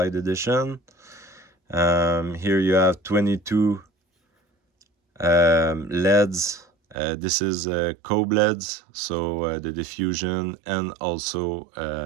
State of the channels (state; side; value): drops out; left; at 7.0 s